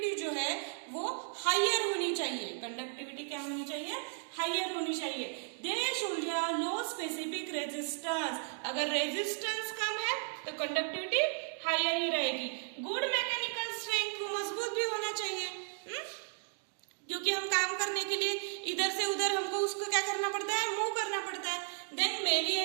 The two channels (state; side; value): silent; left; 55 dB below the other